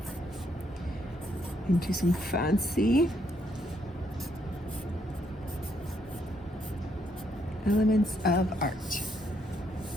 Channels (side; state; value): both; normal; correlation 0.74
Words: into some fancy elements of art.